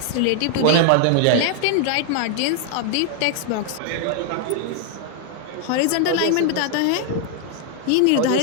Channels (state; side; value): different; both; correlation 0.00